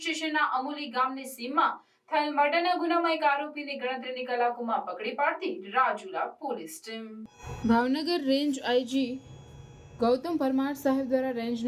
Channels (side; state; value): both; identical; correlation 1.00